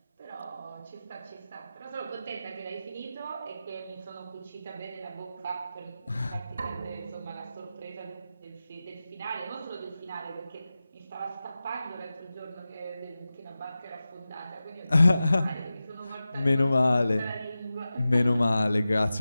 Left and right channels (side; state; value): both; inverted; correlation -0.94